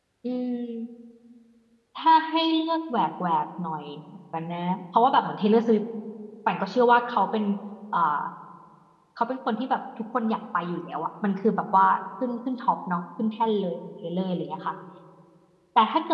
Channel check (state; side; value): identical; both; correlation 1.00